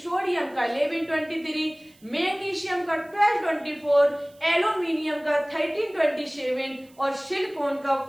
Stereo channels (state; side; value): noise; right; hiss, 29 dB below the sound